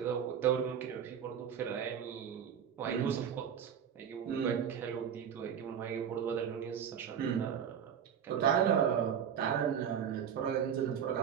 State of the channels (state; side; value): quieter; left; 8.3 dB